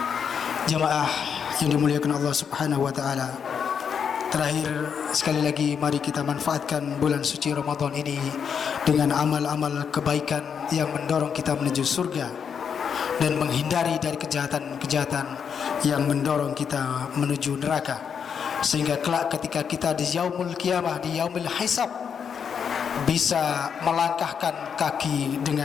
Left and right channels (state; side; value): quieter; right; 7.1 dB